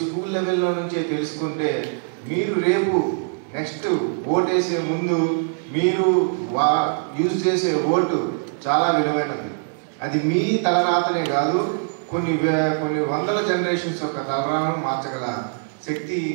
స్కూల్ లెవెల్లో నుంచే తెలుసుకుంటే మీరు రేపు నెక్స్ట్ ఓటేసే ముందు మీరు యూజ్ చేసే ఓటు చాలా విలువైనది. అది మీ తలరాతనే కాదు, కొన్ని వందల జనరేషన్స్ యొక్క తలరాతను మార్చగల శక్తి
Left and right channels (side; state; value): left; silent; digital silence